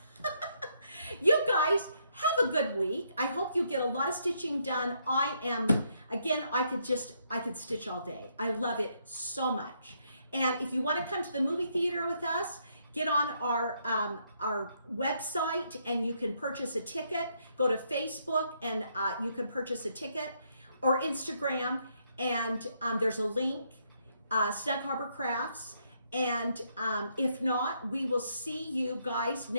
You guys, have a good week. I hope you get a lot of stitching done. Again, I could stitch all day. I love it so much. And if you want to come to the movie theater with us, get on our website and you can purchase a ticket. Go to Facebook and you can purchase a ticket, or Instagram, and there's a link, Snug Harbor Crafts. And if not, we will see you guys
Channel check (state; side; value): inverted; both; correlation -0.74